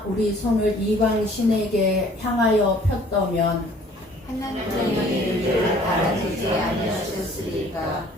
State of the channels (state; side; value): normal; both; correlation 0.54